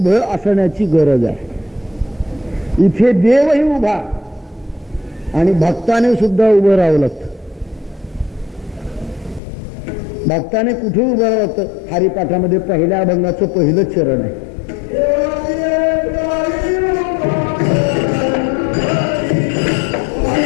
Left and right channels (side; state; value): right; drops out; at 9.4 s